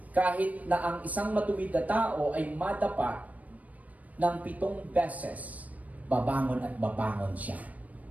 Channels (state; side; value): late; left; 0.072 ms